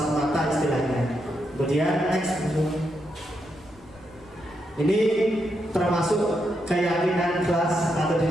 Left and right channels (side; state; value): left; noise; rumble, 25 dB below the sound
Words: mata istilahnya. Kemudian next, ini termasuk keyakinan kelas atau